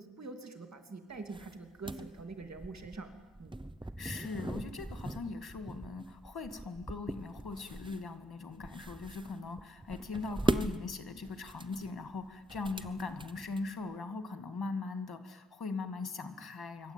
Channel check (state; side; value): normal; both; correlation 0.76